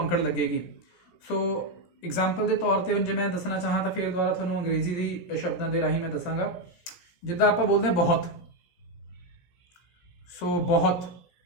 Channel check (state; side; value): late; right; 17 ms